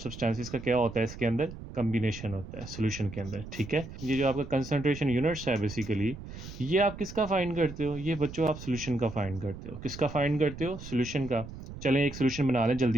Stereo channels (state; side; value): noise; right; rumble, 12 dB below the sound